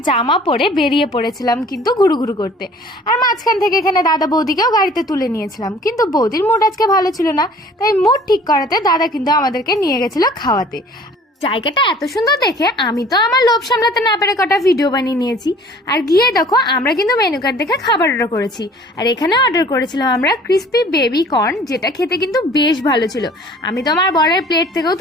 জামা পরে বেরিয়ে পড়েছিলাম কিন্তু ঘুরু ঘুরু করতে। আর মাঝখান থেকে এখানে দাদা বৌদিকেও গাড়িতে তুলে নিয়েছিলাম, কিন্তু বৌদির মুড আজকে ভালো ছিল না, তাই মুড ঠিক করাতে দাদা কিন্তু আমাদেরকে নিয়ে গেছিল খাওয়াতে। জায়গাটা এত সুন্দর দেখে আমি তো আমার লোভ সামলাতে না পেরে কটা ভিডিও বানিয়ে নিয়েছি। আর গিয়ে দেখো আমরা কিন্তু মেনু কার্ড দেখে খাবার অর্ডার করেছি। আর এখানে অর্ডার করেছিলাম আমরা ক্রিস্পি বেবি কর্ন, যেটা খেতে কিন্তু বেশ ভালো ছিল। আমি তো আমার বরের প্লেট থেকেও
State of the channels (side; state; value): both; normal; correlation 0.50